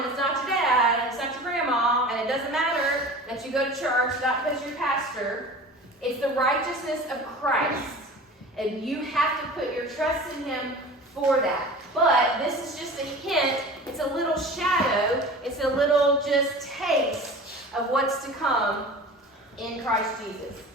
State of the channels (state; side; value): normal; both; correlation 0.38